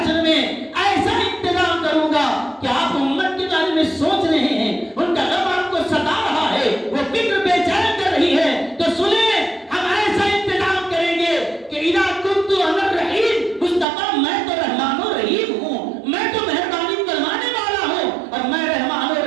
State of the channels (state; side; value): drops out; left; at 13.9 s